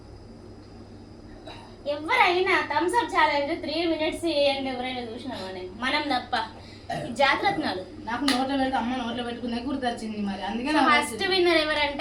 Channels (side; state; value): both; identical; correlation 1.00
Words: ఎవరైనా థమ్స్ అప్ ఛాలెంజ్ 3 minutes చేయండి ఎవరైనా చూసినామని మనం తప్ప జాగ్రత్తలు నాకు నోట్లో పెడితే అమ్మ నోట్లో పెట్టుకునే గుర్తొచ్చింది మరి అందుకే ఫస్ట్ విన్నర్